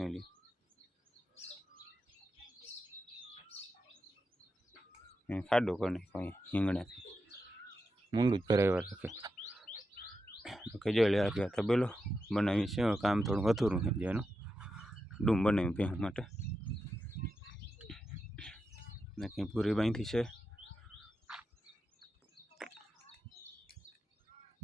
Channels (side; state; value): both; normal; correlation 0.88